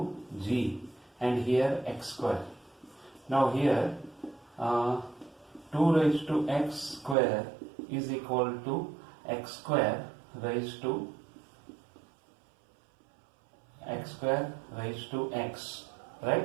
g, and here x square. Now here 2 raised to x square is equal to x square raised to x,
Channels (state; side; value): drops out; left; at 7.2 s